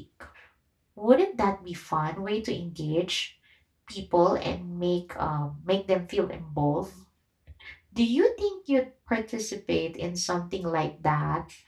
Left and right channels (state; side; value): identical; both; correlation 1.00